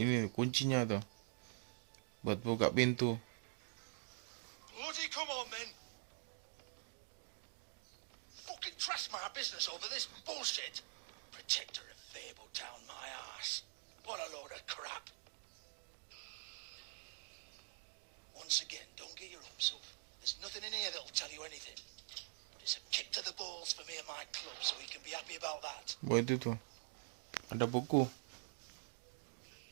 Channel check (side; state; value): left; silent; digital silence